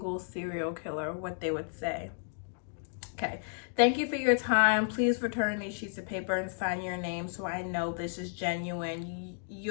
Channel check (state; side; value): silent; right; digital silence